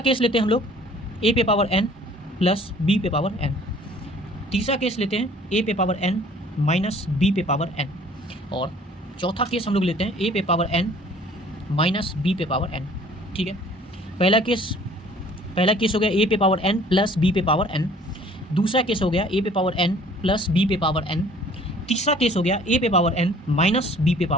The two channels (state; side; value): normal; both; correlation 0.53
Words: केस लेते हैं हम लोग A पे पावर N प्लस B पे पावर N। तीसरा केस लेते हैं A पे पावर N माइनस B पे पावर N। और चौथा केस हम लोग लेते हैं A पे पावर N माइनस B पे पावर N। ठीक है, पहला केस हो गया A पे पावर N प्लस B पे पावर N। दूसरा केस हो गया A पे पावर N प्लस B पे पावर N। तीसरा केस हो गया A पे पावर N माइनस B पे